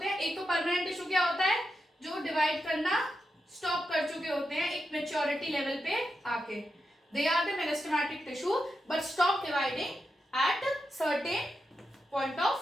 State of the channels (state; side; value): normal; both; correlation 0.87